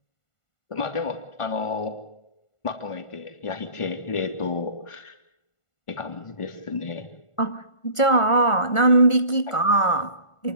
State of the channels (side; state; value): right; late; 1.5 ms